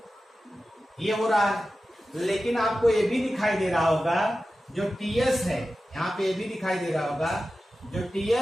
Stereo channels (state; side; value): normal; both; correlation 0.94